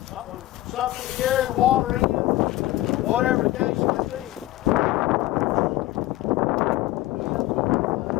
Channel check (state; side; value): quieter; right; 16.4 dB